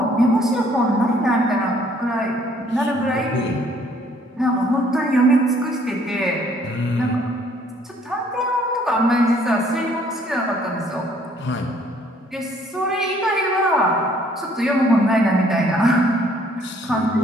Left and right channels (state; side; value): normal; both; correlation 0.62